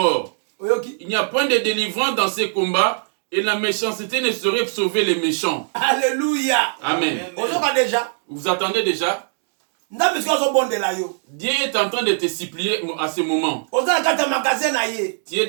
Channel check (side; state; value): left; silent; digital silence